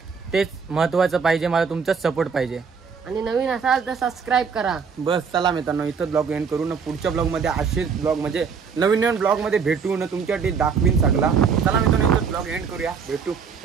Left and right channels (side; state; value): left; quieter; 6.0 dB